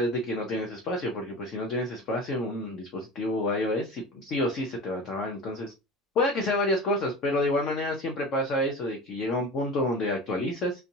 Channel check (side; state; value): both; normal; correlation 0.33